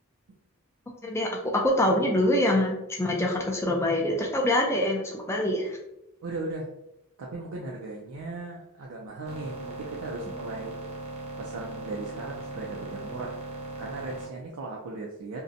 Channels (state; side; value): normal; both; correlation 0.33